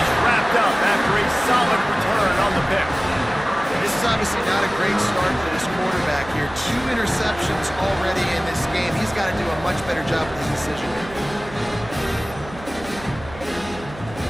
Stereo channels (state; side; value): noise; right; hum, 16 dB below the sound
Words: wrapped up after a solid return on the pick. This is obviously not a great start for this quarterback here. 2 interceptions already in this game. He's got to do a much better job with his decision making.